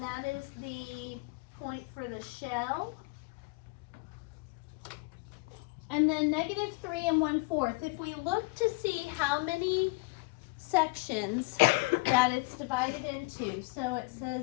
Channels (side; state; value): right; quieter; 26.3 dB